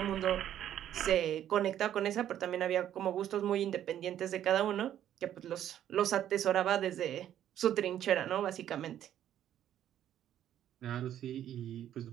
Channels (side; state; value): left; quieter; 11.0 dB